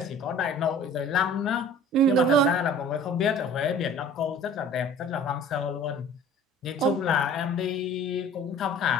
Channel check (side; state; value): both; normal; correlation 0.47